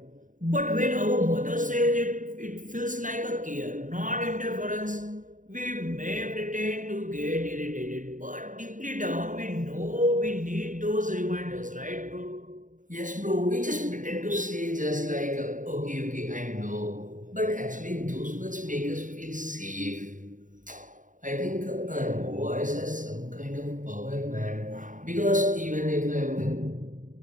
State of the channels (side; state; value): left; late; 0.38 ms